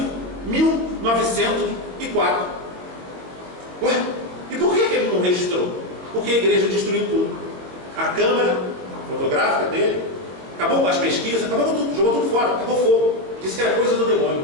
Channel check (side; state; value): left; late; 22 ms